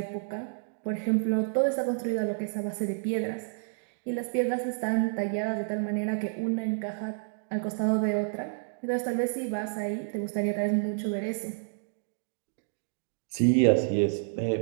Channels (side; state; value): left; silent; digital silence